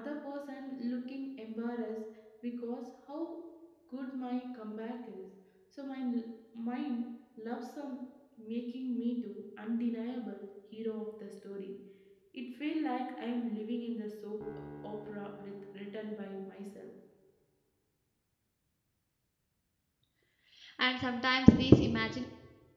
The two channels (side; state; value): both; identical; correlation 1.00